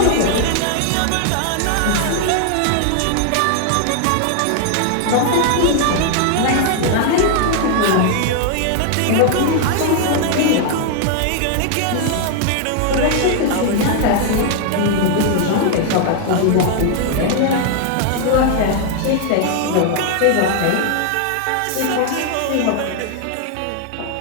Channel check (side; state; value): both; different; correlation 0.00